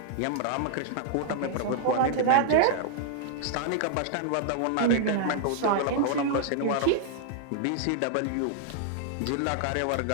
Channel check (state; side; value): different; both; correlation -0.01